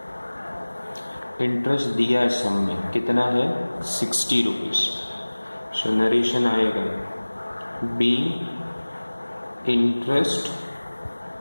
Interest दिया है सम में, कितना है? 60 रुपीज़. सो नरेशन आएगा be interest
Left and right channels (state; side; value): inverted; both; correlation -1.00